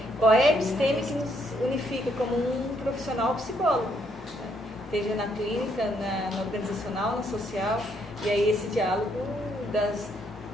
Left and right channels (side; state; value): both; normal; correlation 0.72